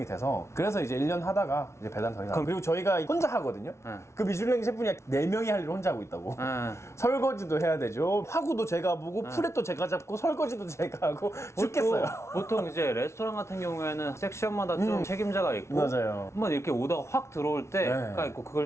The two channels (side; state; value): right; late; 0.13 ms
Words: 돼서 그래서 이제 1년 하다가 이제 배달 더 이상. 그리고 저희가 혼자 하거든요. 네. 그 미슐랭 셰프님 4명이 할 일을 혼자 하고 있다고. 네. 설거지도 해야 되죠. 화구도 제가 보고 프렛도 제가 잡고 설거지도 제가 하고 죽겠어요. 보통 이제 레스토랑 같은 경우에는 섹션마다 좀 책임자가 있고 맞아요. 한번 이렇게 오다가 확 들어올 때가 있고